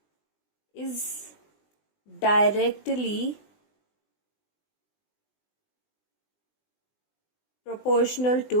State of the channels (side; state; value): right; late; 20 ms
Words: is directly proportional